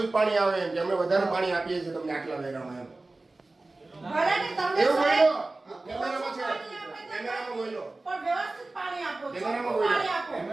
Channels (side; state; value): left; quieter; 3.1 dB